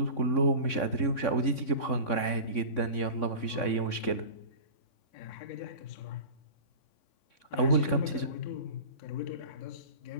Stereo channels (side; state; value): right; late; 3.6 ms